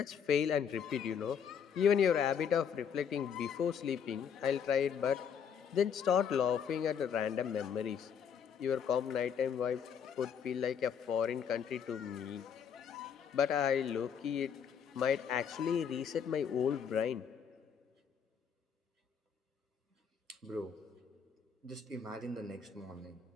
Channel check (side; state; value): right; quieter; 7.5 dB